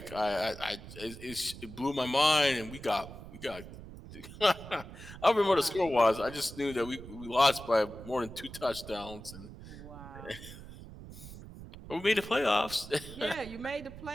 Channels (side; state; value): right; noise; rumble, 14 dB below the sound